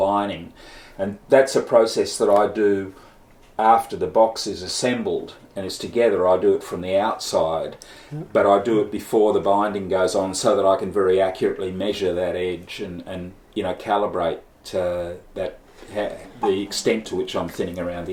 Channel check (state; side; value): identical; both; correlation 1.00